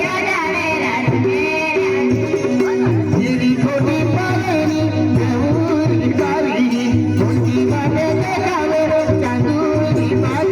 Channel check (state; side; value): identical; both; correlation 1.00